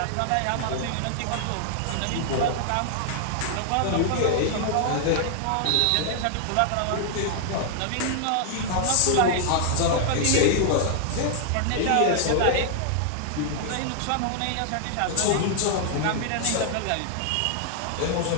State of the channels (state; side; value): different; both; correlation 0.00